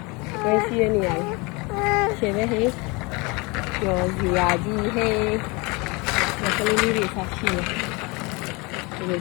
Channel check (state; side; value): quieter; right; 27.3 dB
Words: ဘယ်စီးရနေရလဲ။ရှယ်ပဲဟေးပျော်စရာကြီးဟေးဒီကလေးလေးတွေဆက်ရှိတယ်။ဒီ